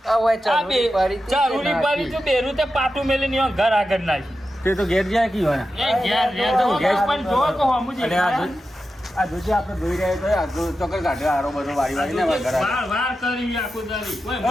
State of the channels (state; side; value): normal; both; correlation 0.91